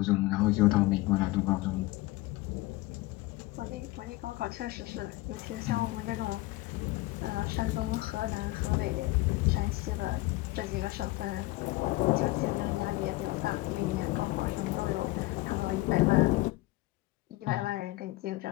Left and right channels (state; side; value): quieter; right; 19.9 dB